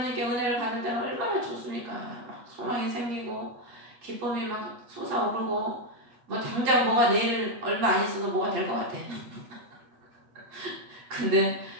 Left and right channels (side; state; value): left; late; 8.2 ms